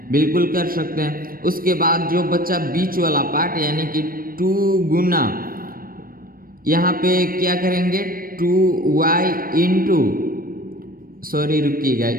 बिल्कुल कर सकते हैं। उसके बाद जो बच्चा बीच वाला पार्ट यानी कि 2 गुना यहाँ पे क्या करेंगे, 2y इंटू, सॉरी रुकिएगा,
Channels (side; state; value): left; late; 0.42 ms